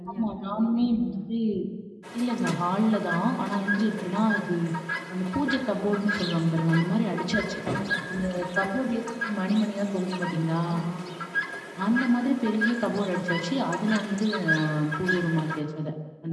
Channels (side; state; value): both; identical; correlation 1.00